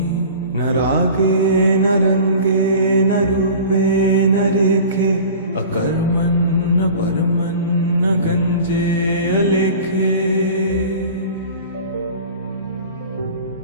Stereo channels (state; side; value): inverted; both; correlation -0.40